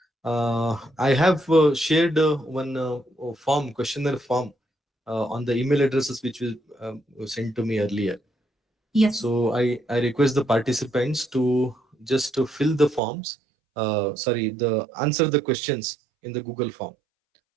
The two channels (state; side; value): drops out; left; at 13.0 s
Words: I have shared one form, questionnaire form, on the email addresses which was sent to me earlier. Yes, So I request the participants to just to fill the forms. Sorry, the answer the questions in the Google form.